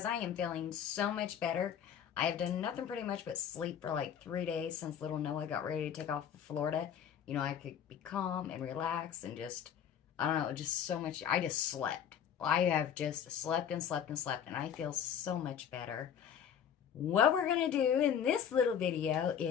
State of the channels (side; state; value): right; quieter; 8.6 dB